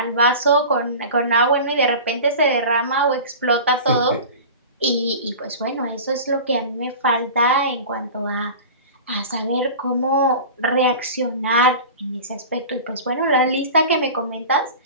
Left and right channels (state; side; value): inverted; both; correlation -0.35